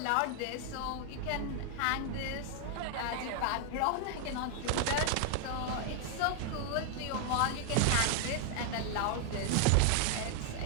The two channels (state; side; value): different; both; correlation 0.00